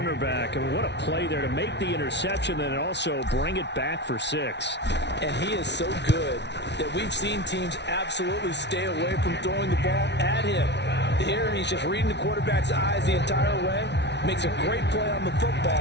I mean, what a play there to make the interception and also bring it back for 6. And he is so good that we've seen teams absolutely stay away from throwing the ball at him. Here, he's just reading the quarterback's eyes the entire way, makes a great play on the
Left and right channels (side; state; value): right; late; 0.50 ms